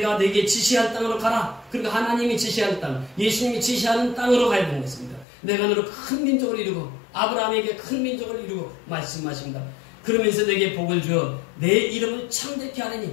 내게 지시할 땅으로 가라. 그리고 하나님이 지시할 땅, 예수님이 지시하는 땅으로 가야 되는 것입니다. 내가 너로 큰 민족을 이루고 아브라함에게 큰 민족을 이루고 말씀하십니다. 그러면서 내게 복을 주어 내 이름을 창대케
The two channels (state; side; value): drops out; right; at 5.2 s